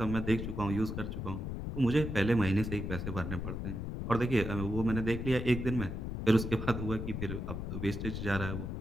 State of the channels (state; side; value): noise; left; rumble, 4 dB below the sound